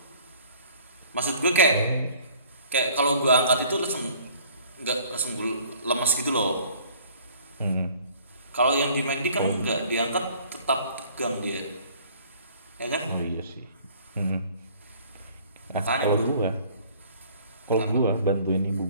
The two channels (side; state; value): both; inverted; correlation -0.54